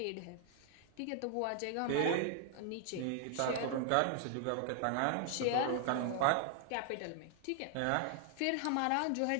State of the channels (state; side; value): different; both; correlation 0.00